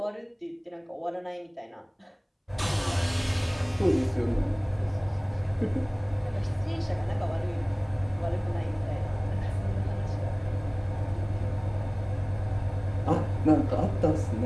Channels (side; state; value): both; identical; correlation 1.00